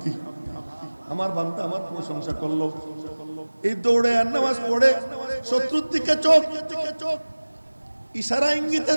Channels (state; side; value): inverted; both; correlation -1.00